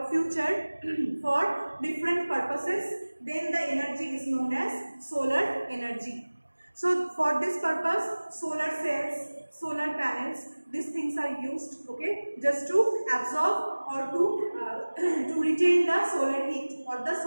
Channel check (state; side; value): inverted; both; correlation -1.00